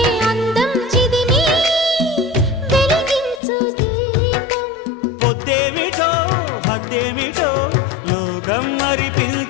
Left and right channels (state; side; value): drops out; right; at 3.4 s